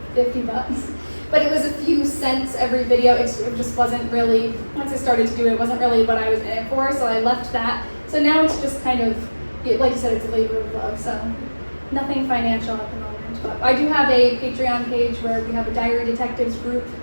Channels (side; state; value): both; inverted; correlation -1.00